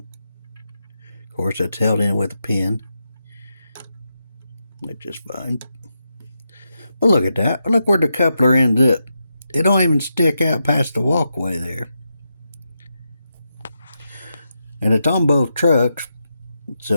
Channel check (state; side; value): inverted; both; correlation -0.86